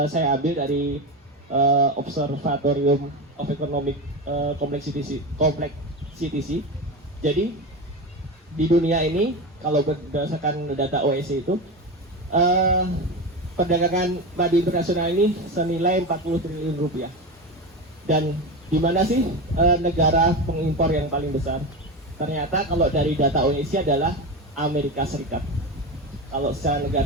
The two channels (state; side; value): normal; both; correlation 0.21